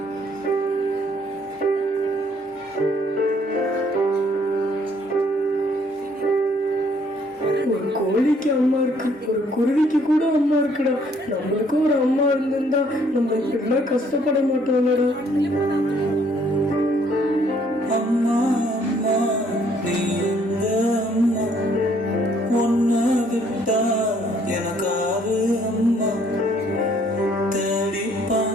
ஒரு கோழிக்கு அம்மா இருக்கு, ஒரு குருவிக்கு கூட அம்மா இருக்குடா. நம்மளுக்கும் ஒரு அம்மா இருந்திருந்தா நம்ம இப்படிலாம் கஷ்டப்பட மாட்டோம்லடா. அம்மா அம்மா நீ எங்க அம்மா, ஒன்ன விட்டா எனக்காரு அம்மா, தேடி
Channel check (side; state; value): both; normal; correlation 0.64